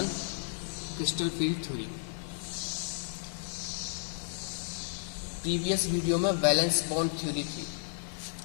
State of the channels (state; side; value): silent; right; digital silence